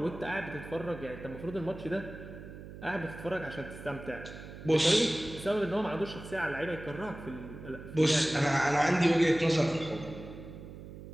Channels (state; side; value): noise; right; hum, 13 dB below the sound